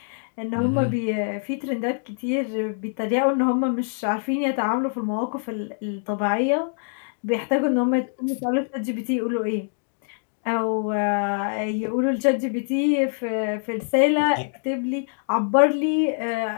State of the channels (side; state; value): right; silent; digital silence